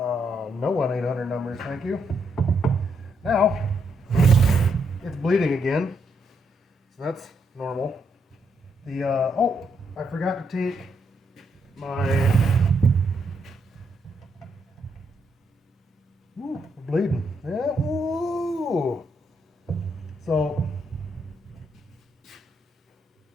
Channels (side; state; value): both; normal; correlation 0.77